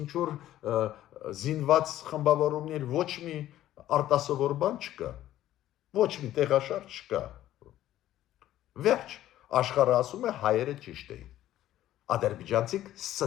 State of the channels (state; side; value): quieter; right; 13.3 dB